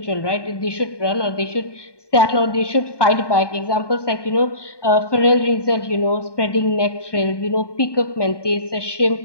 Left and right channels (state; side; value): late; right; 1.2 ms